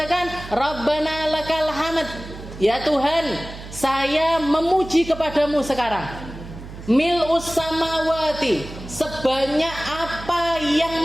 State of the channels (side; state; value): right; noise; hum, 13 dB below the sound